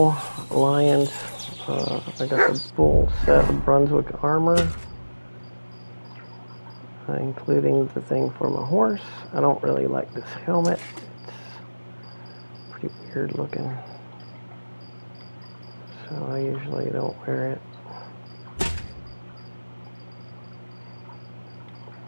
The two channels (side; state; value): both; inverted; correlation -1.00